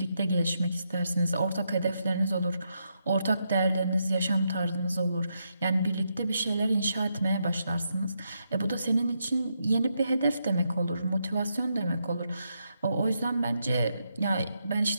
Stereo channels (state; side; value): inverted; both; correlation -0.81